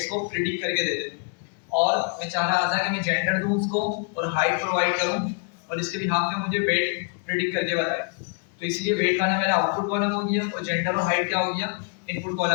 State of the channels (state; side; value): quieter; right; 39.7 dB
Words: को प्रिडिक्ट करके दे दे, और मैं चाह रहा था कि मैं जेंडर दूं उसको और हाइट प्रोवाइड करूं, और इसके बिहाफ में मुझे वेट प्रिडिक्ट करके बताए। तो इसलिए वेट वाला मेरा आउटपुट कॉलम हो गया, और जेंडर और हाइट क्या हो गया? इनपुट